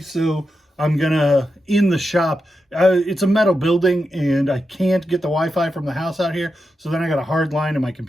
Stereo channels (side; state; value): both; normal; correlation 0.88